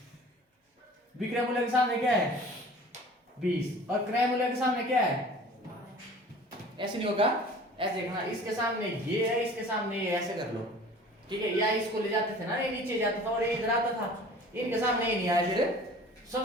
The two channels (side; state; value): both; normal; correlation 0.45